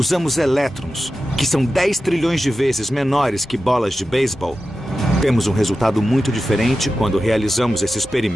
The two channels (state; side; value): normal; both; correlation 0.92